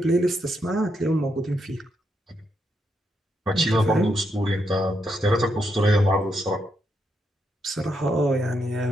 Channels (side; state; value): both; normal; correlation 0.80